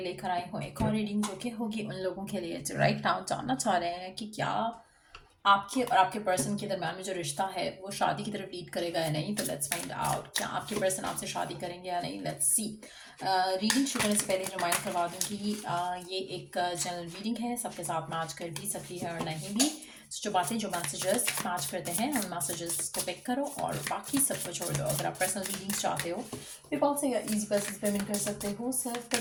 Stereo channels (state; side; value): identical; both; correlation 1.00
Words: लेकर आई हूँ एक और रीडिंग जो कि होगी उन लोगों के लिए जो राइट नाउ जानना चाह रहे हैं कि क्या आपके और आपके पर्सन के दरम्यान में जो रिश्ता है वो शादी की तरफ लीड करेगा या नहीं। तो लेट्स फाइंड आउट क्या आपके पर्सन आपसे शादी करेंगे या नहीं। Let's see. रीडिंग शुरू करने से पहले रिमाइंड करवा दूँ कि ये एक जनरल रीडिंग है, सबके साथ मैच कर भी सकती है और नहीं भी। जो बातें जो मैसेजेस मैच करते हैं उन मैसेजेस को पिक करो और बाकी सबको छोड़ दो। अगर आप पर्सनल रीडिंग्स चाहते हो पेपल से या ईजी पैसेज पेमेंट कर सकते हो, सेल्फ